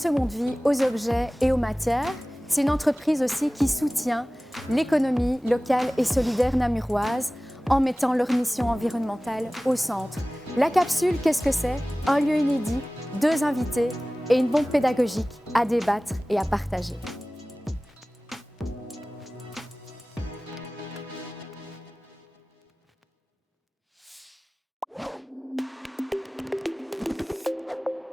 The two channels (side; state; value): both; normal; correlation 0.98